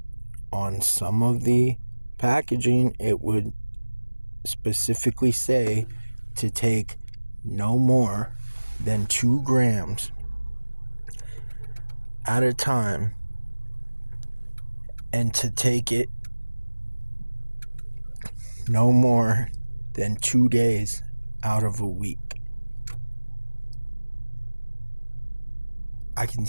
on some of the packaging, it would specifically say to take no more than 2 grams at a time, and to take it no more than 2 days out of a week. I can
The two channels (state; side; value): inverted; both; correlation -1.00